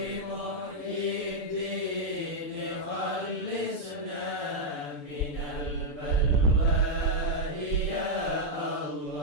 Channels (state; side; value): late; left; 6.8 ms